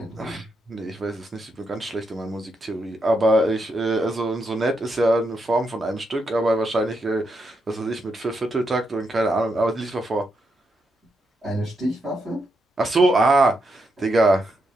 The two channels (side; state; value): both; normal; correlation 0.81